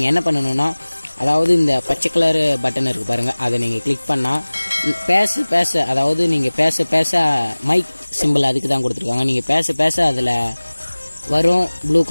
என்ன பண்ணணுன்னா, அதாவது இந்த பச்சை கலர் பட்டன் இருக்குது பாருங்கள், அதை நீங்கள் கிளிக் பண்ணால் பேச அதாவது நீங்கள் பேச மைக் சிம்பிள் அதுக்கு தான் கொடுத்துருக்காங்க. நீங்கள் பேச அதில் வரும் ப்ளூ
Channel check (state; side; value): inverted; both; correlation -1.00